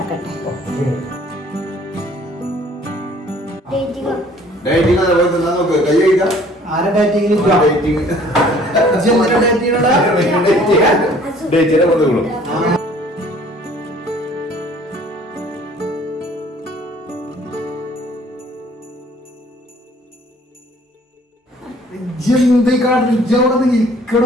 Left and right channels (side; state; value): both; normal; correlation 0.55